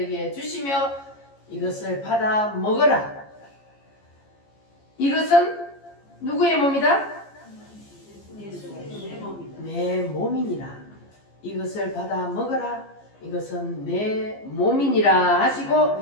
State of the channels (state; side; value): late; right; 14 ms